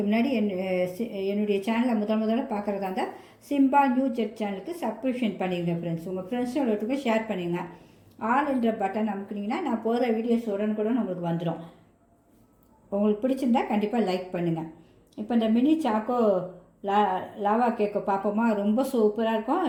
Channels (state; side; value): identical; both; correlation 1.00